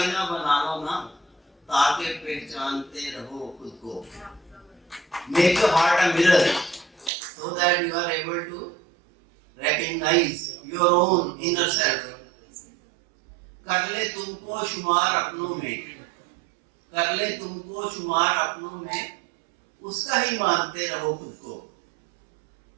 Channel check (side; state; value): left; drops out; at 7.1 s